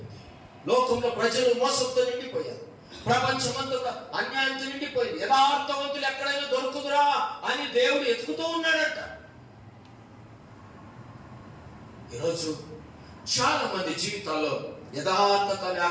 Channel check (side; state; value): both; identical; correlation 1.00